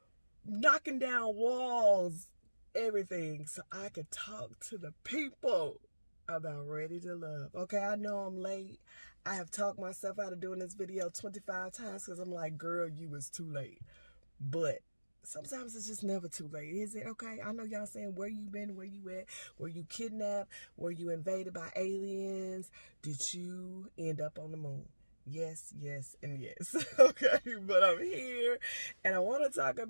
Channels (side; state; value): both; inverted; correlation -1.00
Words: knocking down walls, everything, so I could talk to the people about Ready to Love. Okay, I know I'm late. I have talked myself out of doing this video 25 times because I'm like, girl, you was too late. But sometimes it's just never too late, is it? Okay, I know y'all saying, where you been, where you at, were you kidnapped, were you invaded by aliens, did you end up on the moon? Yes, and yes. Okay, but I'm here and I want to talk